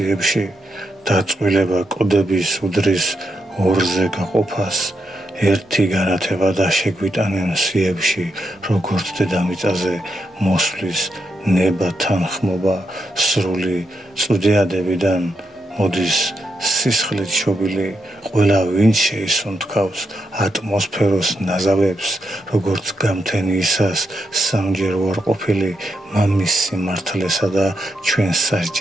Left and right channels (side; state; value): both; normal; correlation 0.83